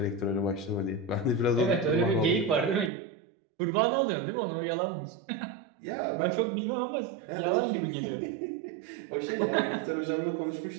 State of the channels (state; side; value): drops out; left; at 2.9 s